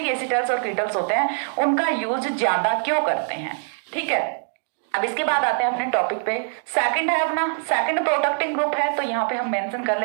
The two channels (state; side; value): silent; left; digital silence